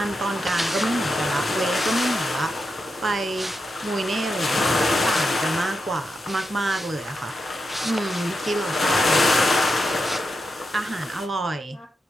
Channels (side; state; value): both; normal; correlation 0.87